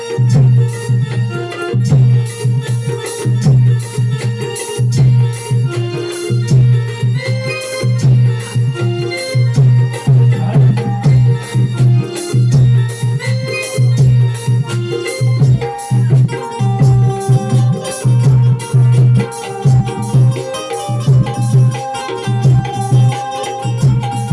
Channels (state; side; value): identical; both; correlation 1.00